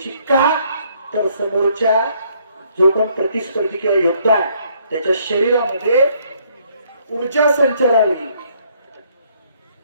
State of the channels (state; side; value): inverted; both; correlation -0.66